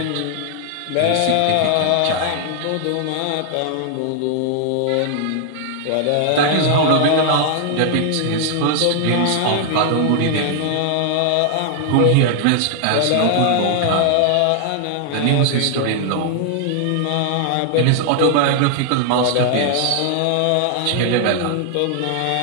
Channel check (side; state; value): both; different; correlation 0.00